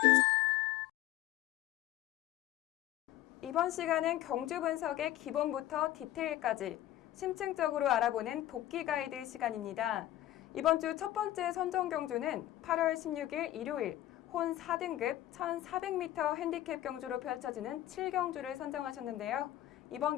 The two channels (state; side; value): quieter; right; 14.0 dB